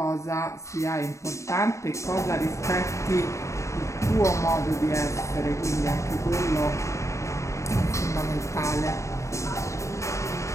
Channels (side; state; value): right; late; 0.14 ms